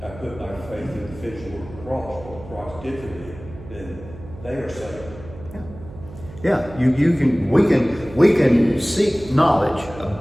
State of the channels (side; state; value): right; noise; hum, 16 dB below the sound